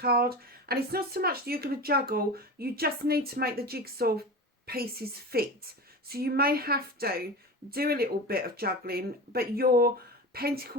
And it's not so much that you're going to juggle. You just need to make the jigsaw pieces fit. So you may have to do a little bit of juggling. But your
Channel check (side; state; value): both; normal; correlation 0.28